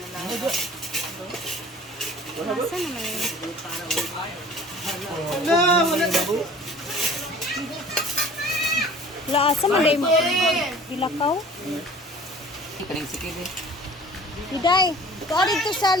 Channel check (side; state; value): both; normal; correlation 0.47